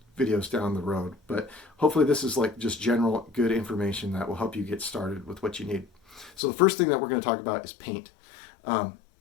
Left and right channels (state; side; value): drops out; right; at 6.3 s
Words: videos down the road, but hopefully this is like just general good information that will help you get started with what you need. So the first thing that we're going to talk about is paint.